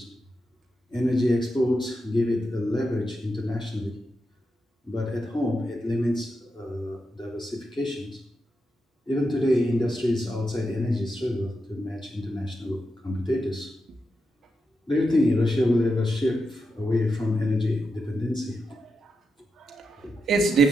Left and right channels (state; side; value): normal; both; correlation 0.87